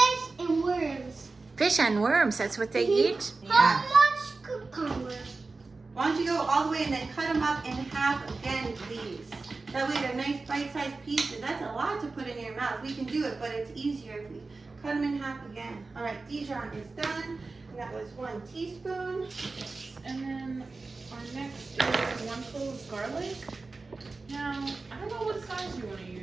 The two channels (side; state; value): left; quieter; 3.7 dB